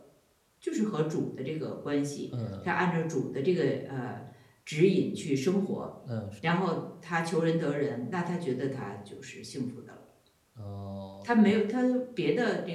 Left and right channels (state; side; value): identical; both; correlation 1.00